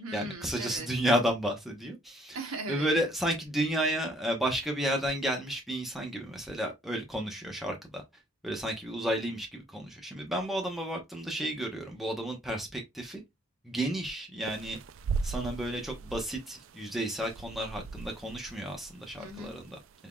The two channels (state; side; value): normal; both; correlation 0.65